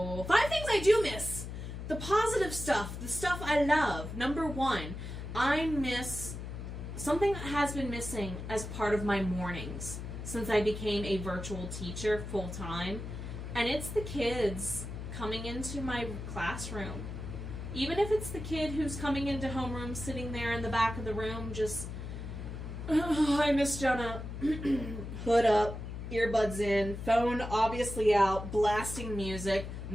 5 things I do miss. The positive stuff, the stuff I love. Number 1, I miss something that has been missing as part of my mornings since I became a virtual teacher full time, and it's the kids coming into my classroom. Even if it's the kid who's coming into homeroom, sitting there in the back of the room, just, oh, I miss Jenna. Hood up, earbuds in, phone obviously out, blasting music.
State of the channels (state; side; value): noise; left; hum, 7 dB below the sound